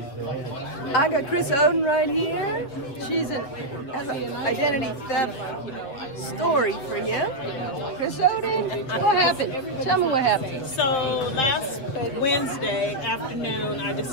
I got Chris Oden right here. She's has an identity theft story for you. Chris Oden, what happened? Tell me what happened. So last Wednesday afternoon, I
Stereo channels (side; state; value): right; late; 7.6 ms